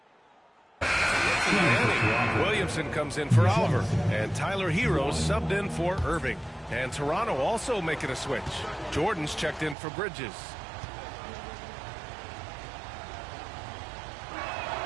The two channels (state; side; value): drops out; left; at 9.8 s